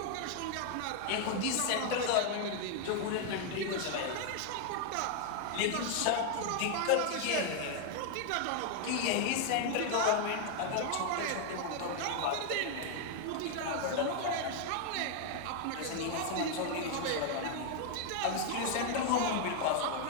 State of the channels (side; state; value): both; different; correlation 0.00